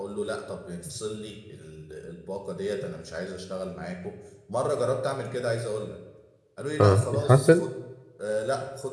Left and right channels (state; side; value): identical; both; correlation 1.00